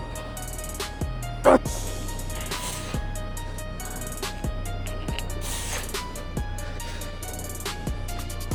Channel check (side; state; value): both; identical; correlation 1.00